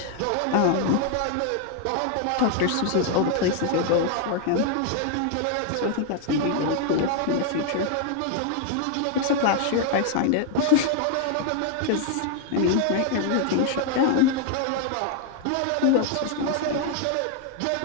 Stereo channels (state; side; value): different; both; correlation 0.00